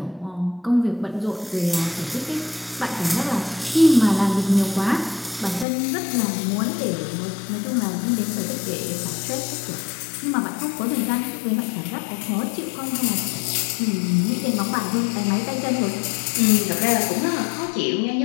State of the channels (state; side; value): drops out; right; at 5.7 s